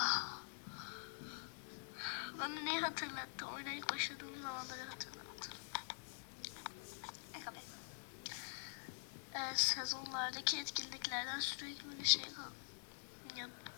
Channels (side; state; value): right; silent; digital silence